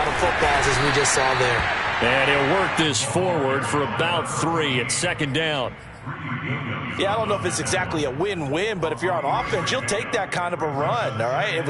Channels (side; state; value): both; identical; correlation 1.00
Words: of footballs, as we just saw there. And he'll work this forward for about 3 at 2nd down. Yeah, I don't know if it's exactly a win-win, but if you're on offense, you'll take that kind of a run, all right? It